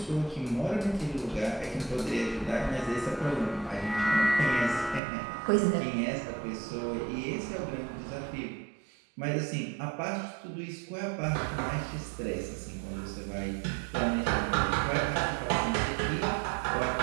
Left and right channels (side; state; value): left; drops out; at 5.0 s